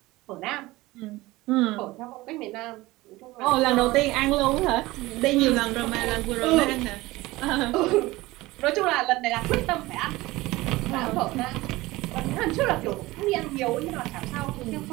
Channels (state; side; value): quieter; left; 19.5 dB